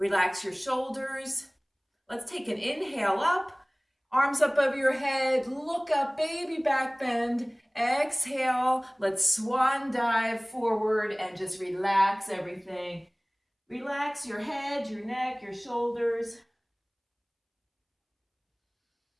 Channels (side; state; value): both; identical; correlation 1.00